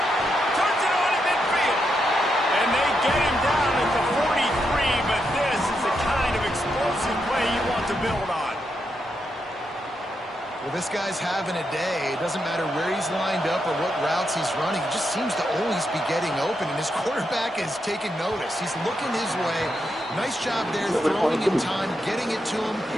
Turns it on in midfield. And they get him down at the 43, but this is the kind of explosive play you want to build on. Well, this guy's having a day. It doesn't matter where he's lined up or what routes he's running. He just seems to always be getting open, and his quarterback is taking notice. He's looking his way. Nice job there, throwing in time, getting it to him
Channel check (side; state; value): both; normal; correlation 0.83